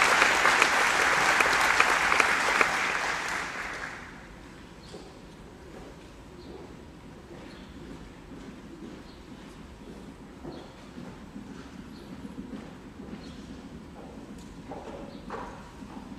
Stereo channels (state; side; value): identical; both; correlation 1.00